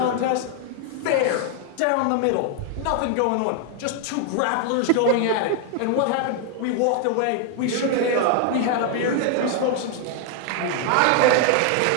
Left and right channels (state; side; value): different; both; correlation 0.00